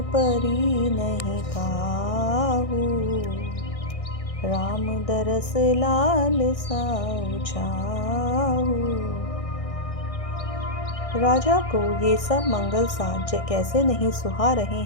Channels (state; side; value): late; right; 1.6 ms